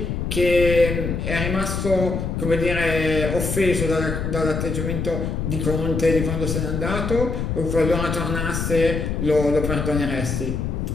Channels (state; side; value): noise; left; rumble, 2 dB below the sound